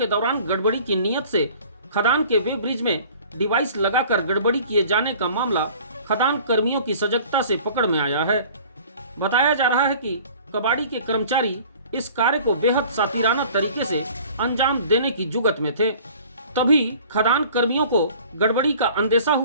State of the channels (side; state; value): both; inverted; correlation -0.48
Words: दौरान गड़बड़ी की नीयत से खदान के वेब ब्रिज में डिवाइस लगाकर गड़बड़ी किए जाने का मामला खदान कर्मियों की सजगता से पकड़ में आया है। बताया जा रहा है कि कबाड़ी के कर्मचारी इस कार्य को बेहद सातिराना तरीके से अंजाम देने की जुगत में थे। तभी खदान कर्मियों को गड़बड़ी का अंदेशा